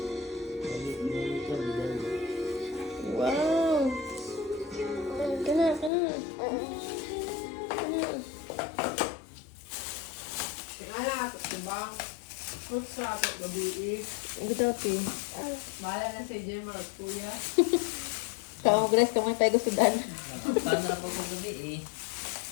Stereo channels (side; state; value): right; drops out; at 5.9 s